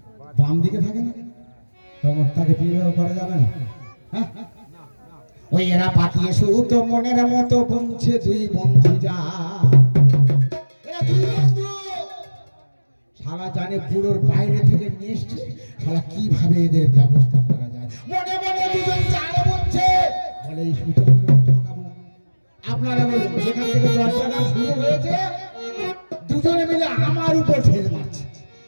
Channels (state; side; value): inverted; both; correlation -1.00